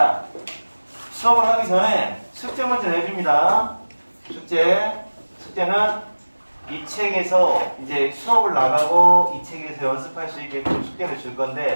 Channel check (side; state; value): both; inverted; correlation -1.00